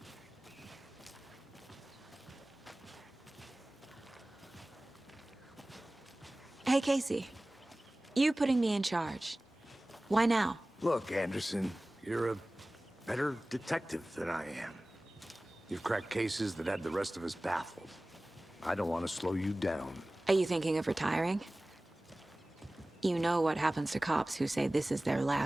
Hey, Casey. You putting me in charge. Why now? Look, Anderson, you're a better detective than I am. You've cracked cases that had the rest of us baffled. I don't want to slow you down. Are you thinking of retiring? You know what happens to cops who say this is their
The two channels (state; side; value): normal; both; correlation 0.98